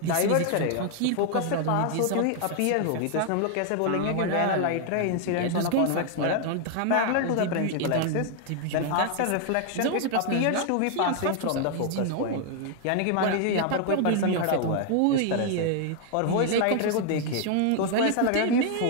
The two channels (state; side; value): different; both; correlation 0.00